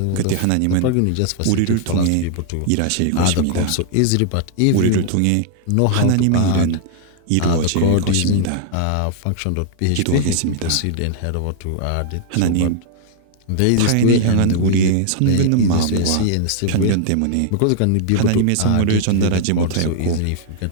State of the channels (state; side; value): different; both; correlation -0.01